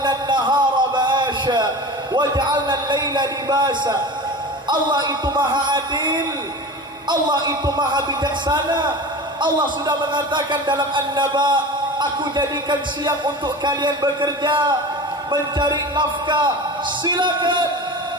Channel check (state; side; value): normal; both; correlation 0.32